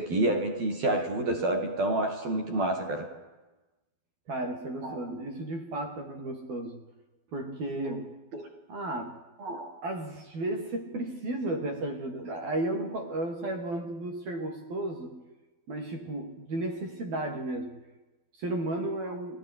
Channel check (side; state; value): left; late; 12 ms